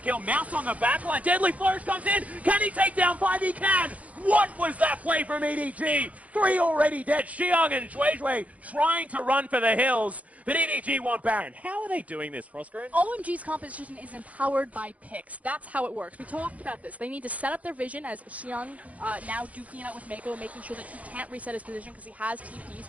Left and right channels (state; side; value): late; left; 0.068 ms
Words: Mouse on the backline. Deadly Flourish comes in. Can he take down 5? He can! What was that play from EDG? 3 already dead. Xiang and Zhuizhui trying to run for the hills, but EDG want Baron. How are they doing this, Frostgreen? OMG's composition is empowered by picks. That's how it works. We talked about this. They need to set up their vision as Xiang now duking it out with Mako, making sure that he can't reset his position because he has TP,